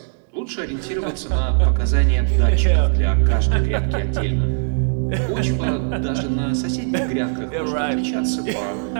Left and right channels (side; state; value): left; silent; digital silence